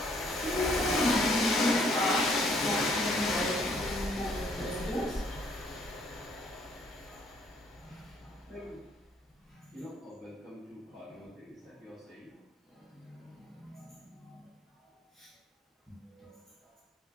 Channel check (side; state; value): both; normal; correlation 0.65